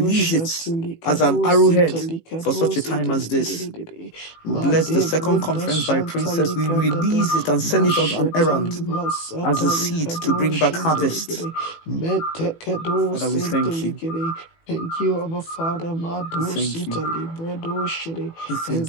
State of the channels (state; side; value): late; right; 18 ms